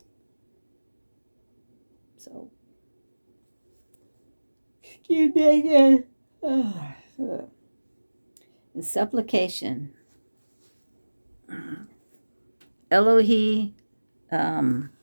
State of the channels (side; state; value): both; inverted; correlation -1.00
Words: So, excuse me again. In supplication, Elohe